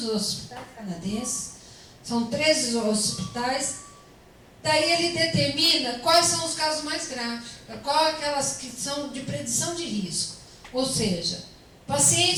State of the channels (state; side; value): identical; both; correlation 1.00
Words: hospitais canadenses. São 13 hospitais. Daí ele determina quais são os casos mais graves, quais aquelas que são de predição de risco. Ou seja,